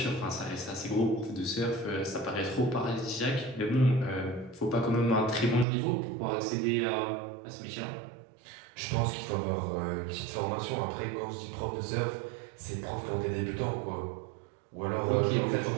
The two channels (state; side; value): drops out; left; at 5.7 s